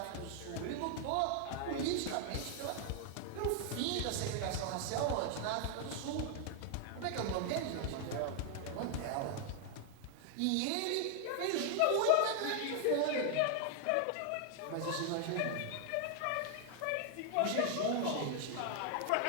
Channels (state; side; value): different; both; correlation 0.00